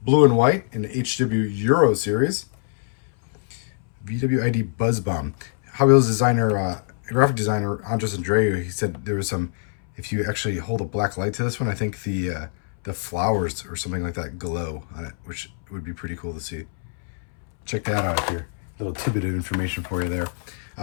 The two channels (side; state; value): right; silent; 63 dB below the other